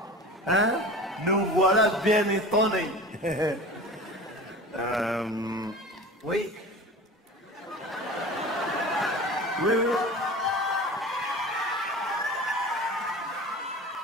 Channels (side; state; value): both; normal; correlation 0.35